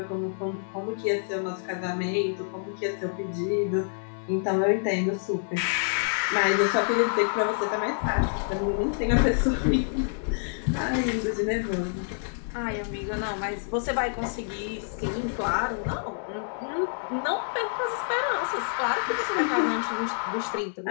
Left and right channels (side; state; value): right; silent; digital silence